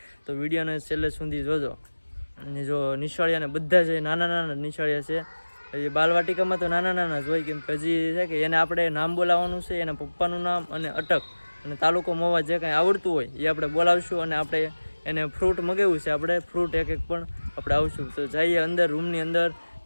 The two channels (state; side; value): inverted; both; correlation -1.00